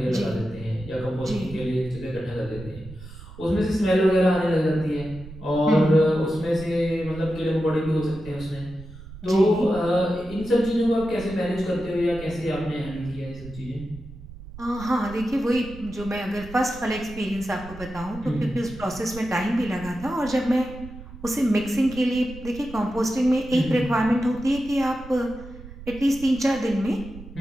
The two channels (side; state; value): right; noise; rumble, 15 dB below the sound